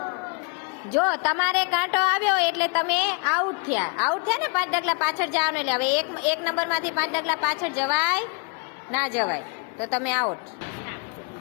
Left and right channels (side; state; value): right; quieter; 36.4 dB